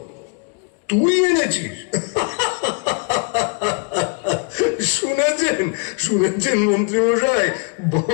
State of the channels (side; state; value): right; quieter; 35.2 dB